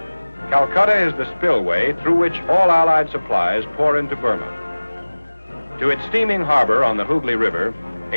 Calcutta is the spillway through which all Allied supplies pour into Burma. To its steaming harbor on the Hooghly River,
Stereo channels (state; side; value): inverted; both; correlation -1.00